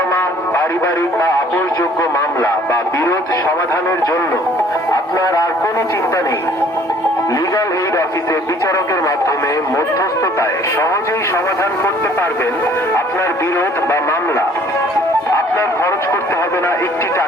পারিবারিক বা আপোষযোগ্য মামলা বা বিরোধ সমাধানের জন্য আপনার আর কোনো চিন্তা নেই। লিগ্যাল এইড অফিসে বিচারকের মাধ্যমে মধ্যস্থতায় সহজেই সমাধান করতে পারবেন আপনার বিরোধ বা মামলা। আপনার খরচ করতে হবে না একটি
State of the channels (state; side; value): normal; both; correlation 0.56